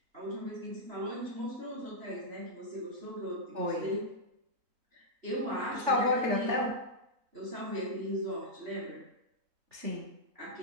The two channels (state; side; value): late; left; 3.4 ms